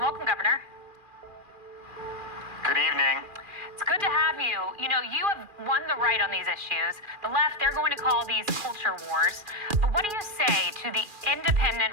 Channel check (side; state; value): left; late; 2.4 ms